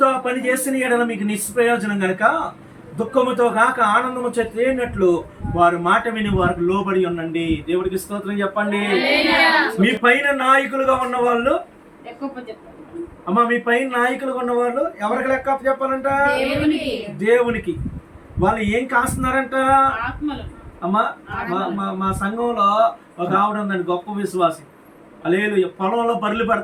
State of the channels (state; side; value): identical; both; correlation 1.00